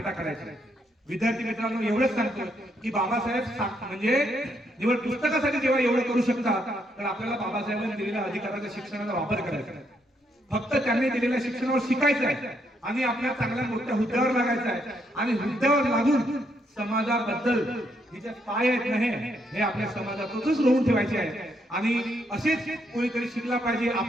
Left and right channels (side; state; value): both; normal; correlation 0.75